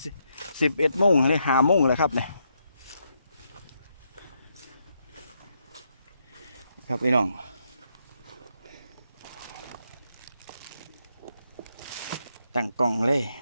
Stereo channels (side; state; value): both; inverted; correlation -0.79